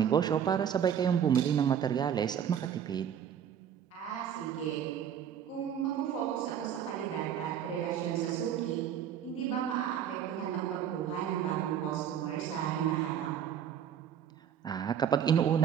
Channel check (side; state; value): left; quieter; 8.9 dB